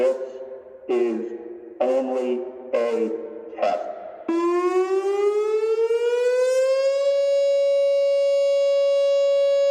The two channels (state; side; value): identical; both; correlation 1.00